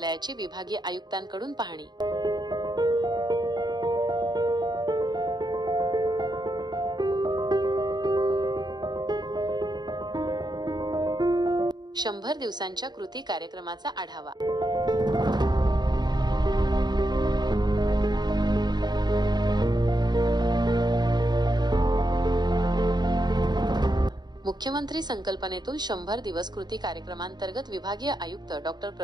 विभागीय आयुक्तांकडून पाहणी। शंभर दिवसांच्या कृती कार्यक्रमाचा आढावा। मुख्यमंत्री संकल्पनेतून 100 दिवस कृती कार्यक्रमांतर्गत विभागीय आयुक्त डॉक्टर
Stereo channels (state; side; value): late; left; 0.20 ms